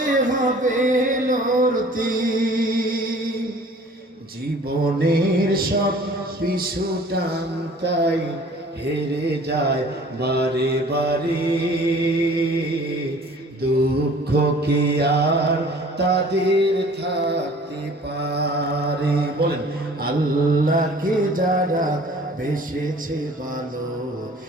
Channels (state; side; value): normal; both; correlation 0.49